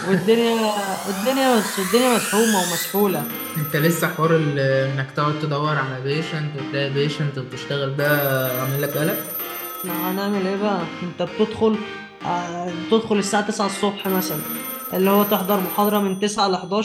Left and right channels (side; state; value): both; identical; correlation 1.00